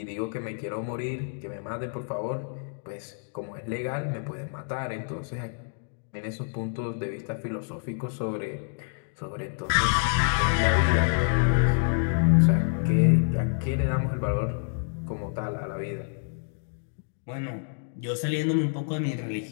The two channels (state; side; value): silent; right; digital silence